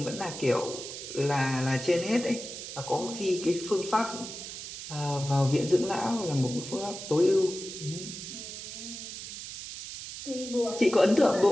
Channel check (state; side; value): noise; right; hiss, 9 dB below the sound